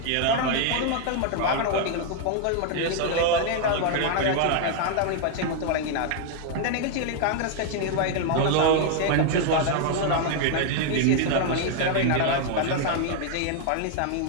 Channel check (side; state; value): both; different; correlation 0.00